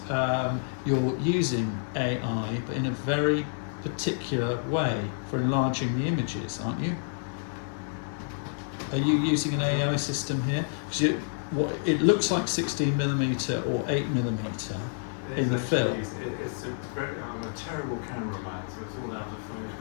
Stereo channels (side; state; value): right; silent; 58 dB below the other